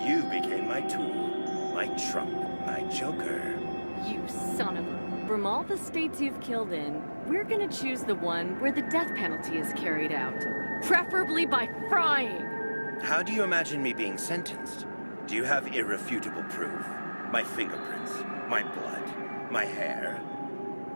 You became my tool, my trump, my Joker. You son of a... From all the states you've killed in, we're gonna choose the one where the death penalty is carried out. Preferably by frying! How do you imagine me being sentenced? Do you have irrefutable proof? My fingerprints, my blood, my hair?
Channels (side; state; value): both; inverted; correlation -1.00